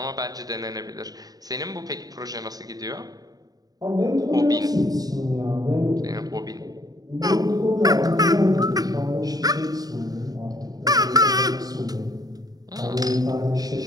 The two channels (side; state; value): left; late; 0.18 ms